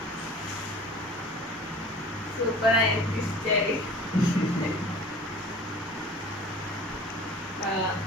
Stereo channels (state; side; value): normal; both; correlation 0.44